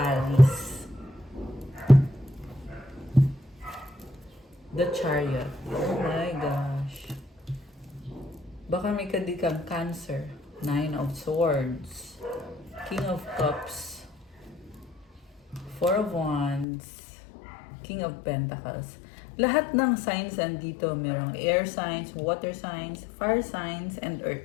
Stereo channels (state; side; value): drops out; right; at 16.7 s